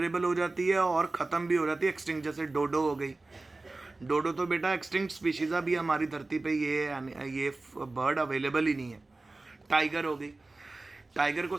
हो जाती है और ख़त्म भी हो जाती है, एक्सटिंक्ट। जैसे डोडो हो गई, डोडो तो बेटा एक्सटिंक्ट स्पीशीज़ अभी हमारी धरती पे ये बर्ड अवेलेबल ही नहीं है। टाइगर हो गई, टाइगर को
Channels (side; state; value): left; quieter; 3.2 dB